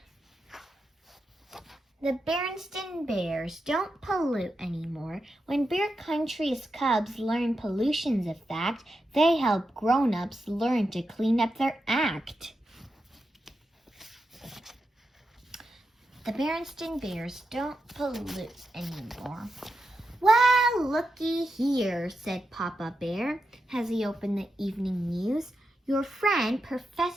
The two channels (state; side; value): normal; both; correlation 0.87